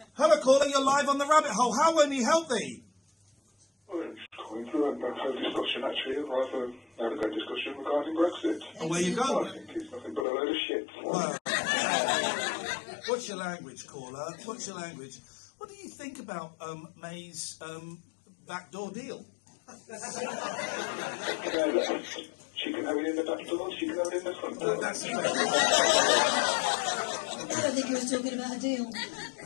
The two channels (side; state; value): right; drops out; at 10.2 s